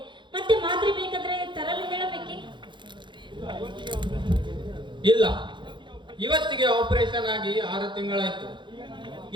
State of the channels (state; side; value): late; left; 0.23 ms